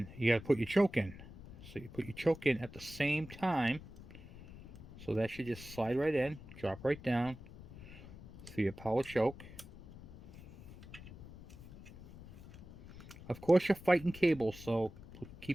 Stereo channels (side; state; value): left; noise; rumble, 16 dB below the sound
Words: you got to put your choke in. So you put your choke in at the same time. So that should just slide right in, drop right down. So your power choke. Of course you're fighting cables, so